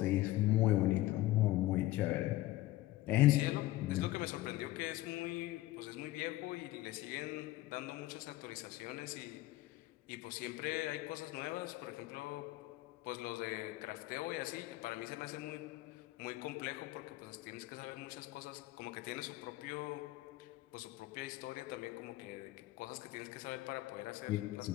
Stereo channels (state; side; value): quieter; right; 17.0 dB